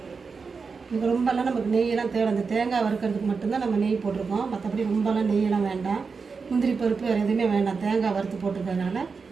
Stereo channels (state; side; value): quieter; left; 5.0 dB